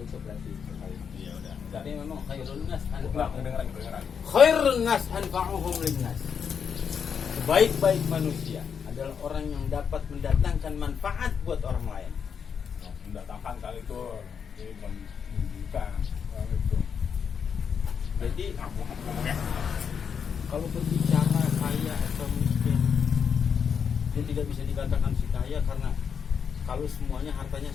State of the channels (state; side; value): quieter; right; 6.9 dB